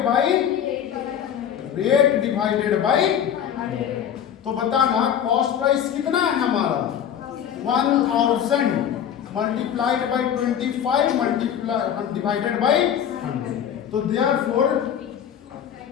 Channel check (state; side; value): quieter; right; 9.2 dB